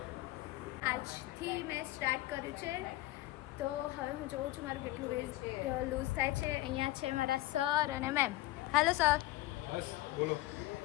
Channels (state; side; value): quieter; right; 17.8 dB